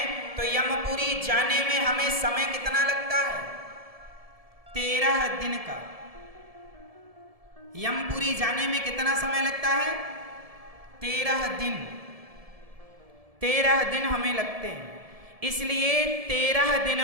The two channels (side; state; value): left; late; 1.7 ms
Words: तो यमपुरी जाने में हमें समय कितना लगता है? 13 दिन का। यमपुरी जाने में कितना समय लगता है? 13 दिन। 13 दिन हमें लगते हैं। इसलिए 13